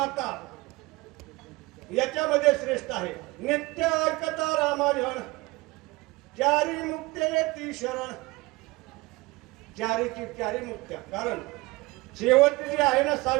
याच्यामध्ये श्रेष्ठ आहे. नित्य ऐकता रामायण, चारी मुक्ते ती शरण. चारीची चारी मुक्त्या. कारण शेवटची जी आहे ना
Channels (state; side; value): quieter; left; 22.5 dB